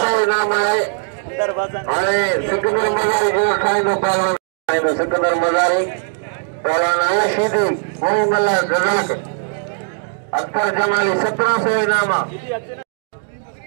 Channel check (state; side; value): silent; left; digital silence